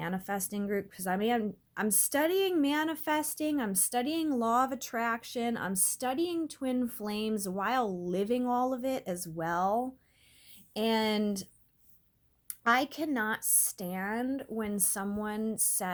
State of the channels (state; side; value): identical; both; correlation 1.00